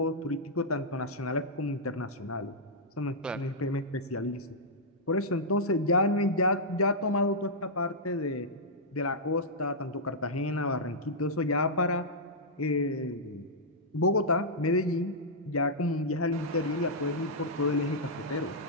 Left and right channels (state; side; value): normal; both; correlation -0.10